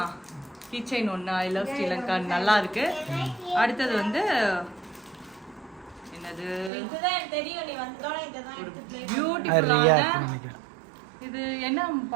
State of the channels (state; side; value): drops out; left; at 6.7 s